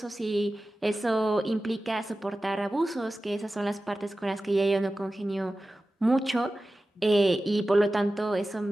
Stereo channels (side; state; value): both; normal; correlation 0.95